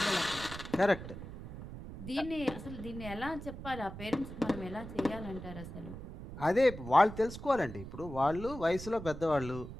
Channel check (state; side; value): noise; right; rumble, 11 dB below the sound